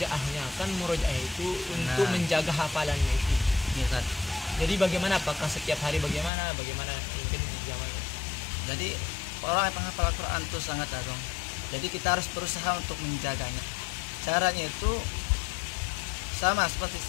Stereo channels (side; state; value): right; drops out; at 6.3 s